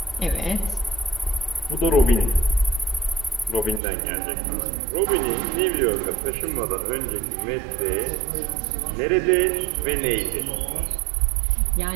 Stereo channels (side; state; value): left; drops out; at 3.8 s